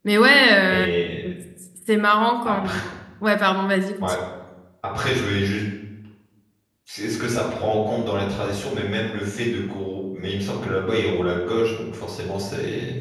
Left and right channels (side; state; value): both; identical; correlation 1.00